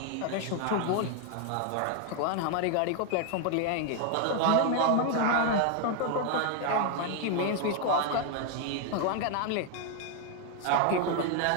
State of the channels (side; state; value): both; different; correlation 0.00